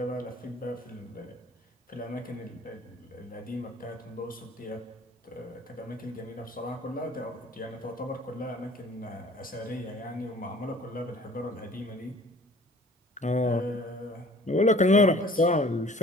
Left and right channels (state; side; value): normal; both; correlation 0.51